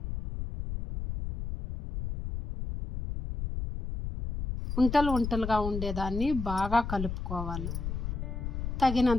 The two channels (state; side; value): noise; left; rumble, 5 dB below the sound